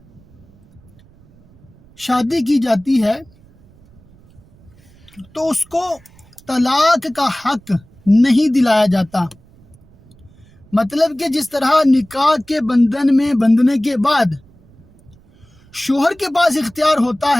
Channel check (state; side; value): noise; right; rumble, 28 dB below the sound